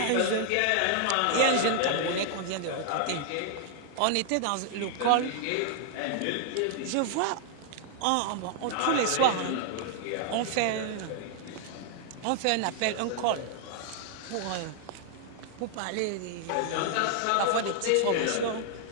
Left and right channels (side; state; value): both; different; correlation 0.00